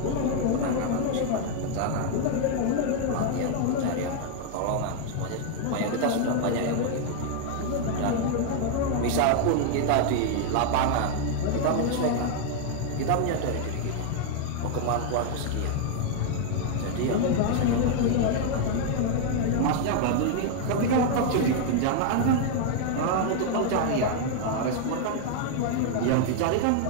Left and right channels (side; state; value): both; different; correlation 0.00